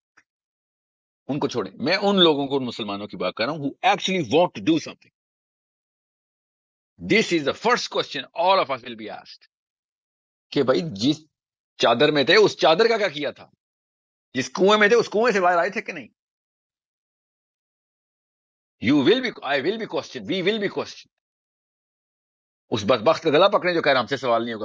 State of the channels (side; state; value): both; identical; correlation 1.00